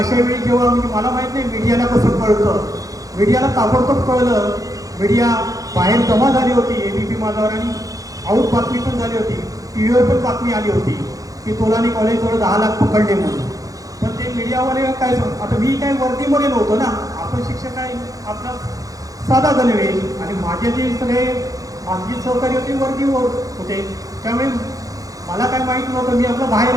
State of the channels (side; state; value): left; late; 0.17 ms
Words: वेळी जेव्हा म्हणजे मला माहीत नाही मीडियाला कसं कळतं. मीडियाला ताबडतोब कळलं. मीडिया बाहेर जमा झाली होती ABP माझावर आणि आऊट बातमी पण झाली होती. TV पण बातमी आली होती की तोलानी कॉलेजवर 10 लाख पकडले म्हणून. पण ते मीडियावाले काय आता मी काय वर्दीमध्ये नव्हतो ना. आपण शिक्षक आहे आपला साधा गणवेश. आणि माझे जे सगळे माझी सहकारी होते वर्दीवर होते. त्यामुळे मला काय माहीत नव्हतं. मी आपलं बाहेर